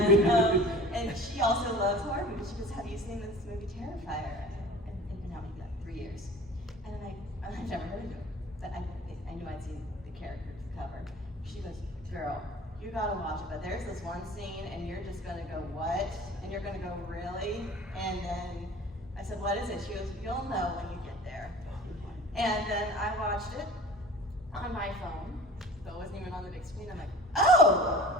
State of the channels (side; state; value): both; normal; correlation 0.43